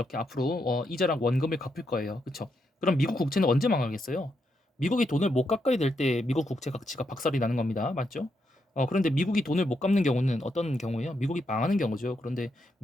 앞으로 이자랑 원금을 갚을 거예요. 그렇죠? 그럼 미국 국채는 언제 망하겠어요? 미국이 돈을 못 갚아야 될 때 미국 국채 가치가 박살이 나는 겁니다. 맞죠? 그런데 미국이 돈을 못 갚는 경우는 어떤 경우예요? 미국이 망하는 경우죠. 그런데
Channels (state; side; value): normal; both; correlation 0.81